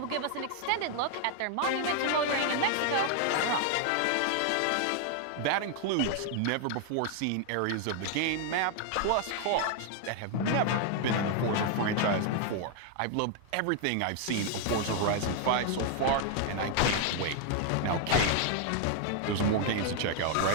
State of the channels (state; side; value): different; both; correlation 0.00